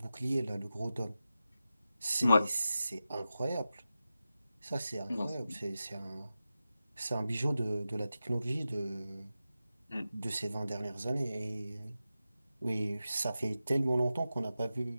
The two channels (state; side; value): inverted; both; correlation -0.92